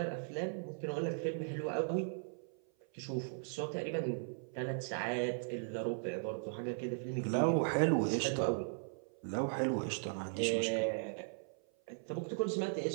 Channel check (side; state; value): left; silent; 53 dB below the other